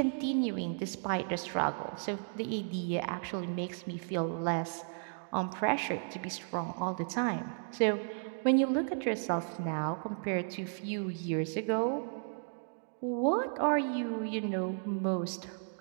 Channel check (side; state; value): left; silent; digital silence